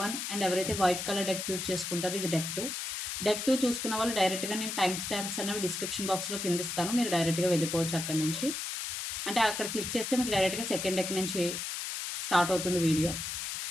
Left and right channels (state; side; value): noise; left; hiss, 4 dB below the sound